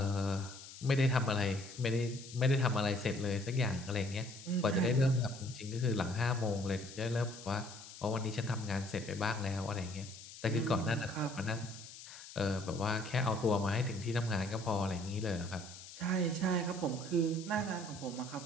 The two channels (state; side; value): noise; left; hiss, 15 dB below the sound